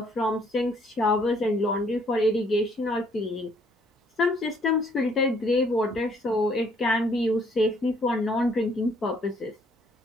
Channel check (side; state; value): both; normal; correlation 0.65